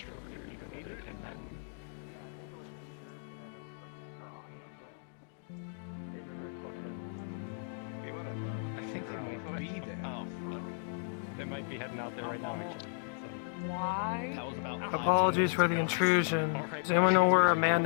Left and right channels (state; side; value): silent; right; digital silence